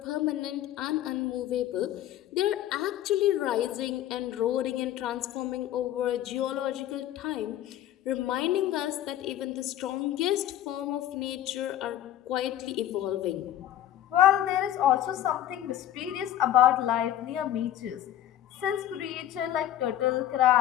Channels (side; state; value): right; quieter; 12.3 dB